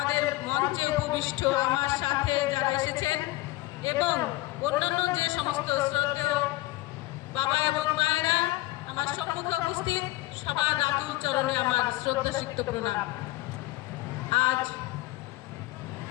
মঞ্চে উপবিষ্ট আমার সাথে যারা এসেছেন এবং অন্যান্য যে সমস্ত শ্রদ্ধেয় বাবা এবং মায়েরা আমার সম্মুখে উপস্থিত, সবার আতুল চরণে আমার শ্রদ্ধাসিক্ত প্রণাম। আজ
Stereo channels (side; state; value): right; quieter; 18.3 dB